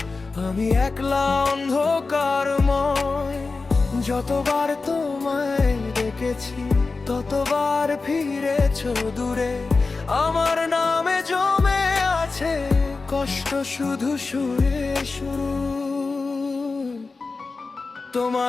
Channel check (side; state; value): right; quieter; 4.0 dB